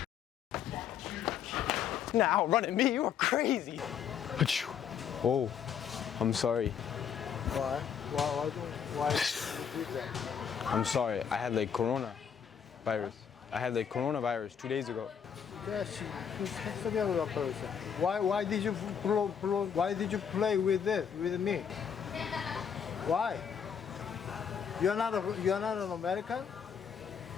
Nah, outrunning me, you are crazy. Achoo. Oh, I'm sorry. Why? Why do you do that? I'm sorry. I had like coronavirus. I had like coronavirus 2 days ago. Why did you why did you play with this with me? Why? You're not an American?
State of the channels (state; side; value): quieter; right; 7.7 dB